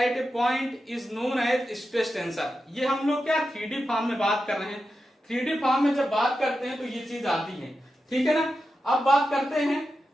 a point is known as stress tensor. ये हम लोग क्या 3D फॉर्म में बात कर रहे हैं। 3D फॉर्म में जब बात करते हैं तो ये चीज आती है, ठीक है ना। अब बात करते हैं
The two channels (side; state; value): both; normal; correlation 0.90